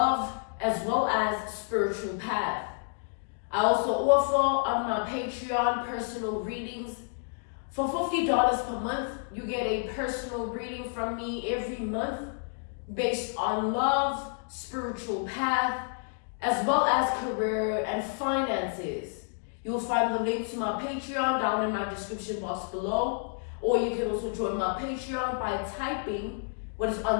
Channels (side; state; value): right; silent; 58 dB below the other